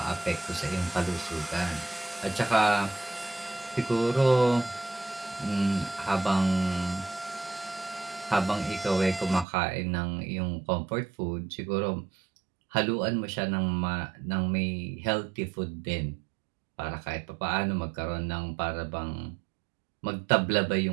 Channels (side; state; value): left; drops out; at 9.5 s